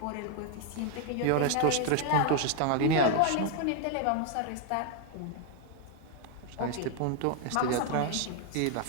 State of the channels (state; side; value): different; both; correlation 0.00